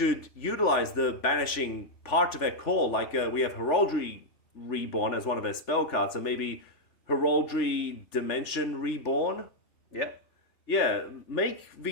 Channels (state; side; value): late; right; 3.0 ms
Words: utilize the banishing part of their core. Like we have Heraldry Reborn as one of their spell cards, so maybe Heraldry Dimension Reborn. Yeah. Yeah, make